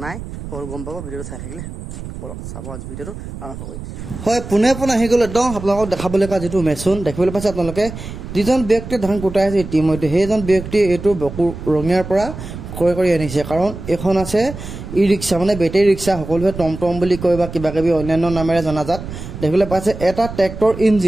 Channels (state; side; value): noise; right; rumble, 10 dB below the sound